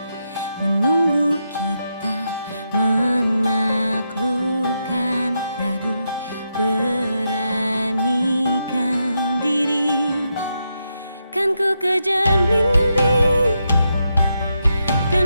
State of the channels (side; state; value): both; inverted; correlation -0.84